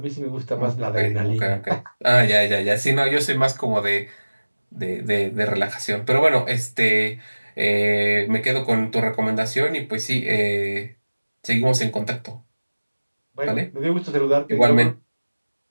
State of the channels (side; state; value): both; inverted; correlation -1.00